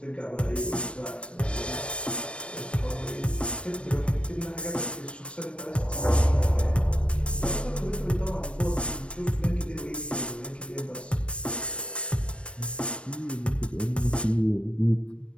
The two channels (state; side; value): late; right; 0.059 ms